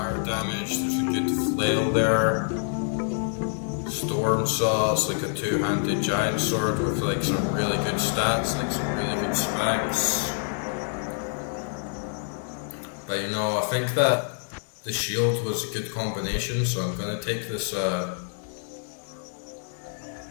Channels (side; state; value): right; silent; 60 dB below the other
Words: damage. There's a good flail there. Storm Saw, it's like a two-handed giant sword with like some really good stats, like some really good specs. But you know, I think that the shield was a good combination, so I'm gonna take this